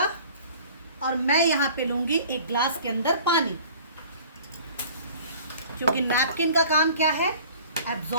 और मैं यहाँ पे लूंगी एक ग्लास के अंदर पानी, क्योंकि नैपकिन का काम क्या है?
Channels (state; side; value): inverted; both; correlation -0.47